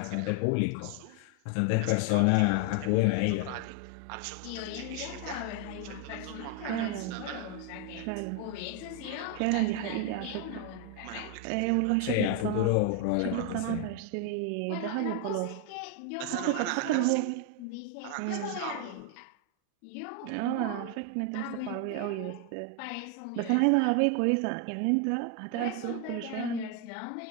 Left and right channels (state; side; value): different; both; correlation 0.01